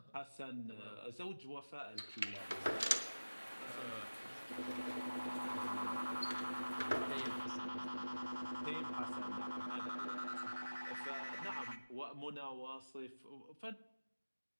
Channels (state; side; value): inverted; both; correlation -1.00